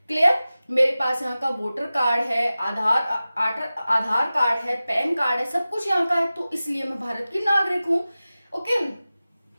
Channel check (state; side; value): inverted; both; correlation -0.96